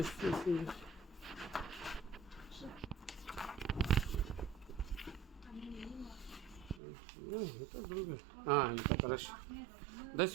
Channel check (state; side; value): drops out; left; at 6.8 s